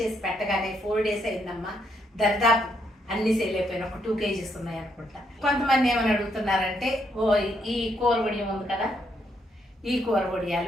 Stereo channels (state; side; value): normal; both; correlation 0.75